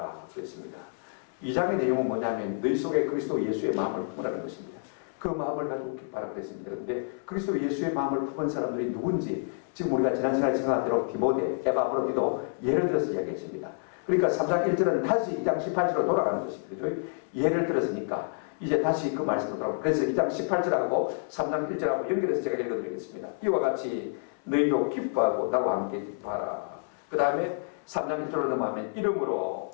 그랬습니다. 2장의 내용은 뭐냐면 너희 속에 그리스도 예수의 마음을 품으라는 것입니다. 그 마음을 가지고 기뻐하라 그랬습니다. 그런데 그리스도 예수의 마음을 품은 사람들이 누군지 지금 우리가 지난 시간에 생각한 대로 디모데, 에바브로디도 예를 들어서 이야기했습니다. 그러니까 3장 1절은 다시 2장 18절로 돌아가는 것입니다. 예를 들었으니까 이제 다시 그 말씀으로 돌아가고 그래서 2장 18절하고 3장 1절하고 연결해서 제가 읽어드리겠습니다. 이와 같이 너희도 기뻐하고 나와 함께 기뻐하라. 그 다음에 3장 1절로 넘어가면 이름으로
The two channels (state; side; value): silent; right; 59 dB below the other